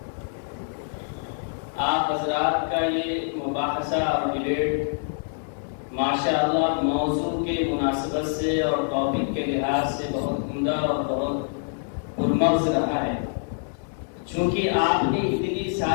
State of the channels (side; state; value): right; silent; digital silence